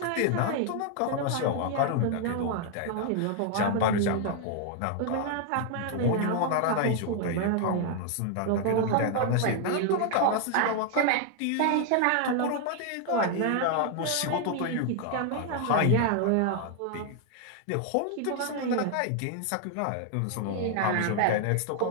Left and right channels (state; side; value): different; both; correlation 0.00